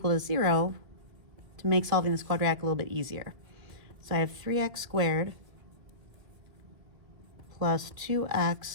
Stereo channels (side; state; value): left; late; 2.2 ms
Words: to 0 to make solving this quadratic a little bit easier. So I have 3x squared plus